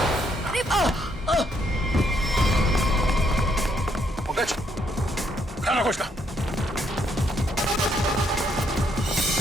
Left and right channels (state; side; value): normal; both; correlation 0.73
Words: पंकज, खाना खोजना।